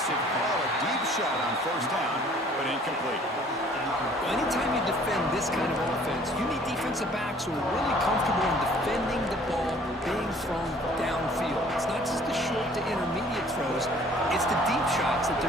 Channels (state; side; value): normal; both; correlation 0.55